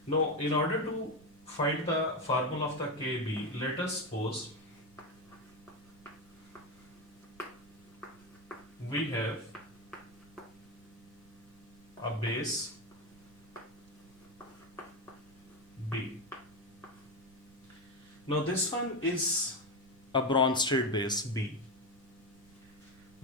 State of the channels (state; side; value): noise; right; rumble, 24 dB below the sound